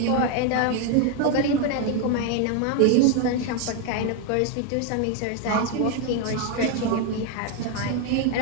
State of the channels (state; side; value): different; both; correlation 0.01